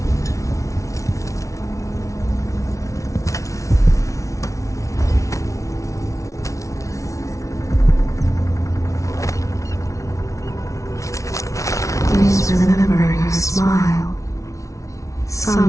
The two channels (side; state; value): right; late; 0.15 ms